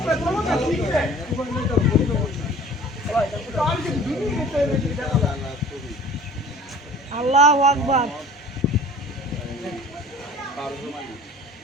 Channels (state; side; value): normal; both; correlation 0.47